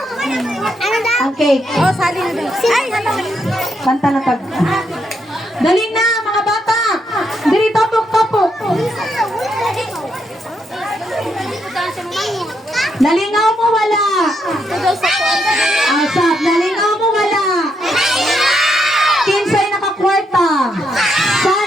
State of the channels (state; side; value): normal; both; correlation 0.78